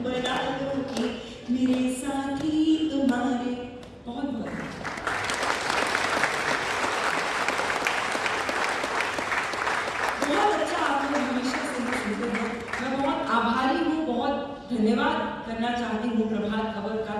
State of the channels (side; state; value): both; identical; correlation 1.00